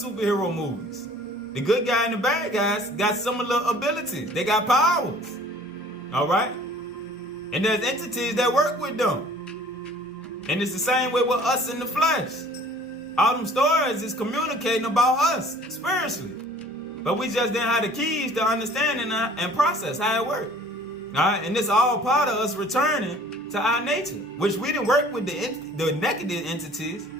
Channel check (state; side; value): normal; both; correlation 0.51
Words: movies. The good guy and the bad guys got similar abilities. They got powers. All right? And there's entities that work with them. And it's the same way with us in the flesh. All them stories is communicating about us spiritually. But we just didn't have the keys to understanding and process how it worked. All right? And it's all part of us returning to our nature, which we didn't work with the negative entities.